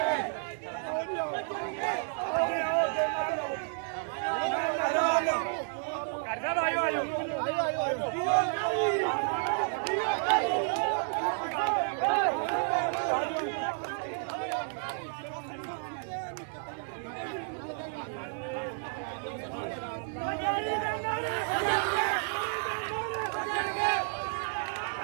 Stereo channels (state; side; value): silent; left; digital silence